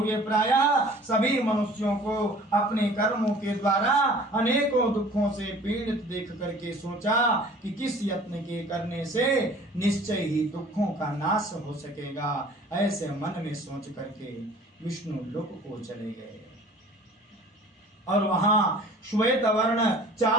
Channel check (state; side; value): normal; both; correlation 0.48